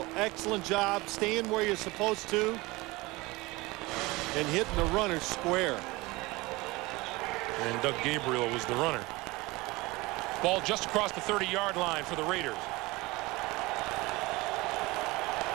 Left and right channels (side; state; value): left; quieter; 22.2 dB